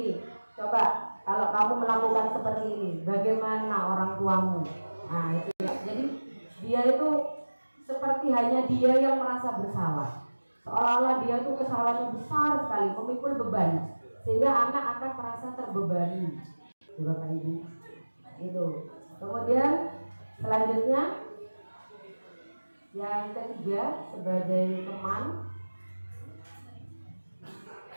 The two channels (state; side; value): inverted; both; correlation -1.00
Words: coba kalau kamu melakukan seperti ini, bagaimana orang tuamu? Nah itu ya. Jadi dia itu seperti hanya dia yang merasa bersalah, seolah-olah dia itu kesalahannya besar sekali, memikul beban, sehingga anak akan merasa terbebani bapak ibu itu. Kemudian selanjutnya yang ketiga, sebagai teman,